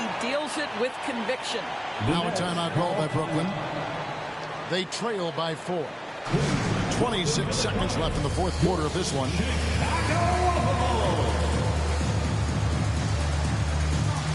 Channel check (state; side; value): identical; both; correlation 1.00